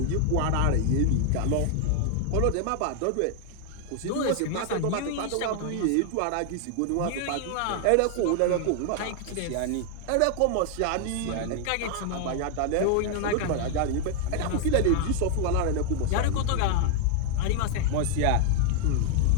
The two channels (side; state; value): both; different; correlation 0.00